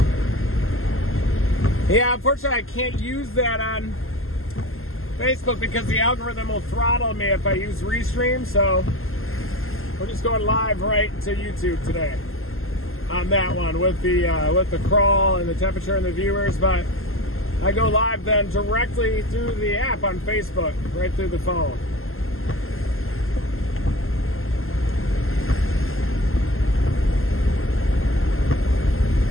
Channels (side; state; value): right; late; 0.61 ms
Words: Yeah, unfortunately I can't use that on Facebook because the algorithm will throttle me if I use Restream, so we're just going live right to YouTube today on that one with the crawl and the temperature and the viewers, but I go live then directly through the app on Facebook, right through the phone.